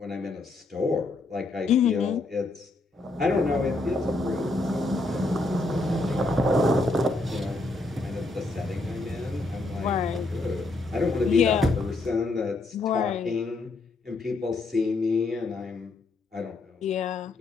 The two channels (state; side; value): quieter; right; 3.1 dB